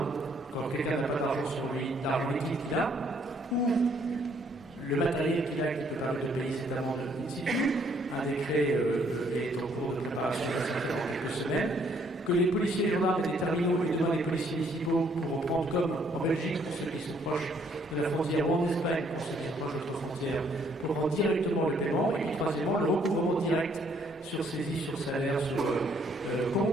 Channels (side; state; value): both; normal; correlation 0.66